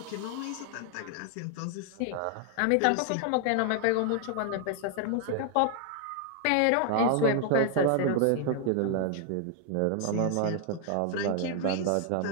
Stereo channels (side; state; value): both; different; correlation 0.00